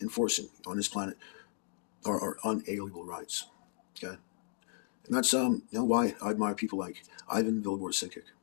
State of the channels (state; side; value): silent; right; 54 dB below the other